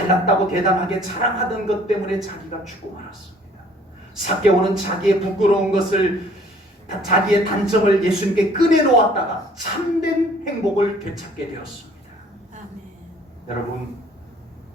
대담하게 자랑하던 것 때문에 자기가 죽고 말았습니다. 삭개오는 자기의 부끄러운 것을, 자기의 단점을 예수님께 꺼내놓았다가 참된 행복을 되찾게 되었습니다. 아멘. 여러분,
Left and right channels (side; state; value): both; normal; correlation 0.56